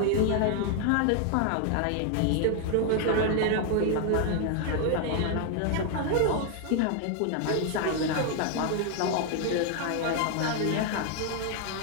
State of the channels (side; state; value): both; different; correlation 0.00